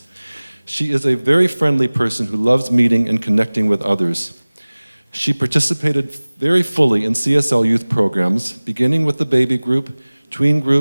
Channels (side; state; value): both; inverted; correlation -1.00